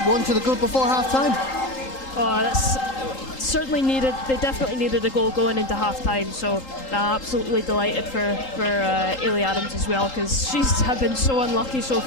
won to the good before half-time. Oh, that's certainly needed. They definitely needed a goal going into half-time, so absolutely delighted for Ailey Adams as well, because she's have been so unlucky so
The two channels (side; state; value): right; late; 3.8 ms